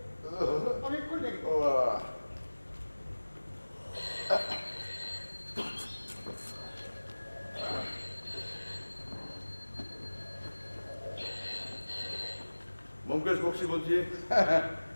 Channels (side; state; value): both; inverted; correlation -1.00